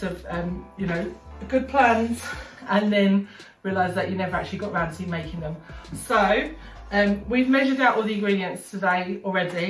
of you know, good plans, and then realise that you never actually got around to making them. So we've measured out all the ingredients today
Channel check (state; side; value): identical; both; correlation 1.00